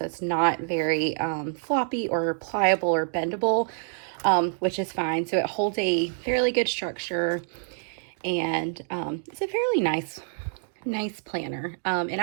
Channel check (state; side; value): silent; left; digital silence